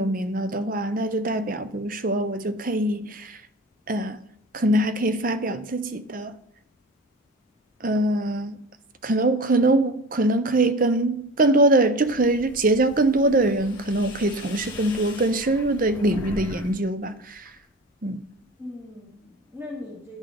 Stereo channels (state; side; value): normal; both; correlation 0.35